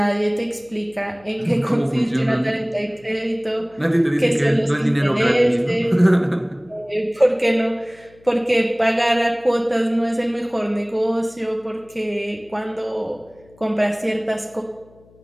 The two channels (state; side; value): noise; left; hum, 28 dB below the sound